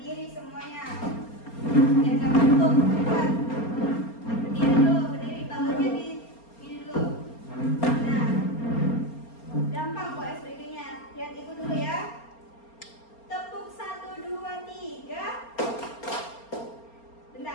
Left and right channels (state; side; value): late; right; 4.3 ms